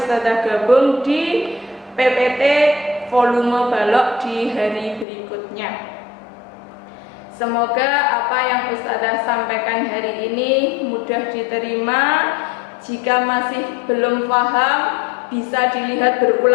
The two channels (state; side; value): drops out; right; at 5.1 s